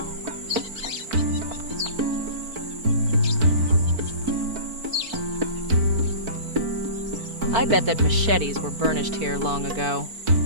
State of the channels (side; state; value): left; late; 4.5 ms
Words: I bet that machetes were burnished here long ago.